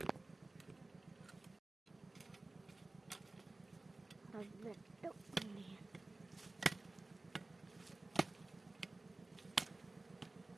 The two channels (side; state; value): left; quieter; 3.1 dB